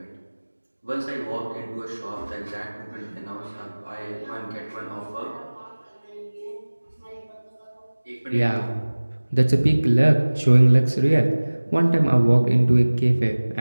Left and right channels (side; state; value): both; inverted; correlation -1.00